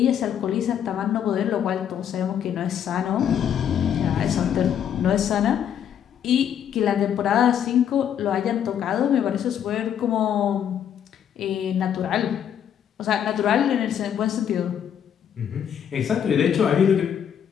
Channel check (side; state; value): right; quieter; 9.1 dB